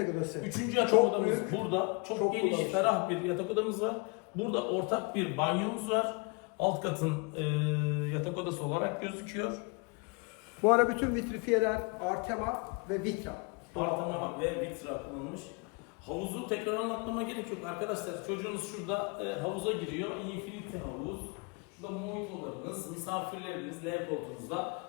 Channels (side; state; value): right; quieter; 31.3 dB